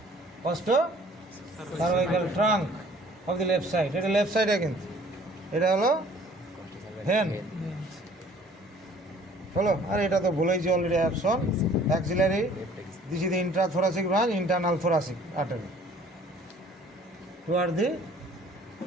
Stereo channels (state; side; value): normal; both; correlation 0.54